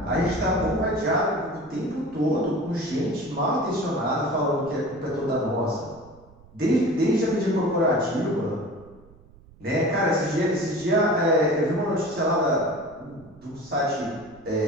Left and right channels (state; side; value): noise; right; rumble, 25 dB below the sound